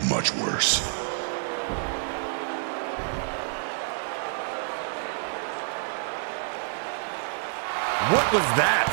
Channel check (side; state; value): left; silent; 57 dB below the other